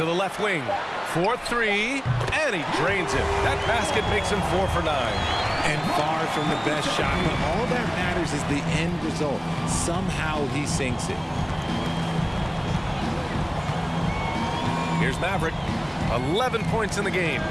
the left wing. 4-3. And he drains it. That basket makes him 4 for 9. And far from the best shot, but all that matters is the end result. Somehow he sinks it. Here's Maverick. 11 points in the game.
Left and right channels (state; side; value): identical; both; correlation 1.00